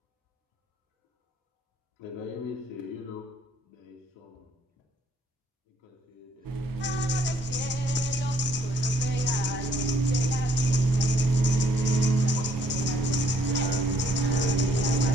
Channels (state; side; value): normal; both; correlation 0.66